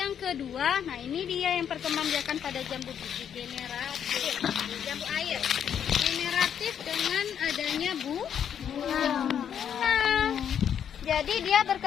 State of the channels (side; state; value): right; quieter; 8.6 dB